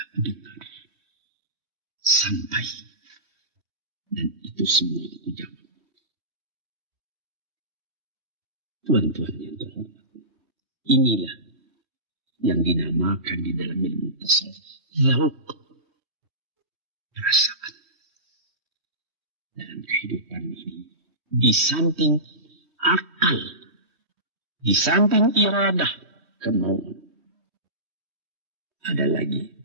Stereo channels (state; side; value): late; left; 3.1 ms